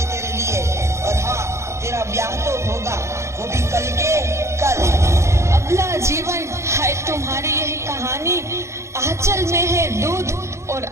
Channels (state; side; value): late; left; 0.14 ms